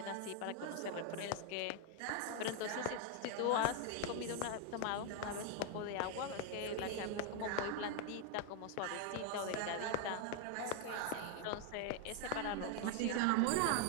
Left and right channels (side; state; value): both; different; correlation 0.01